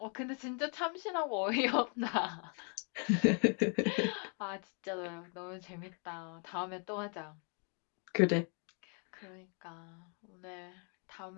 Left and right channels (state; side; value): quieter; right; 39.7 dB